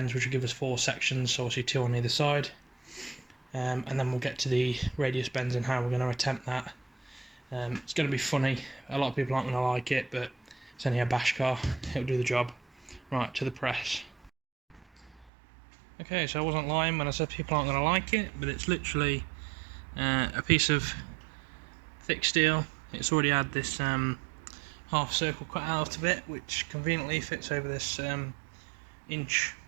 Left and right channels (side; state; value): left; drops out; at 15.3 s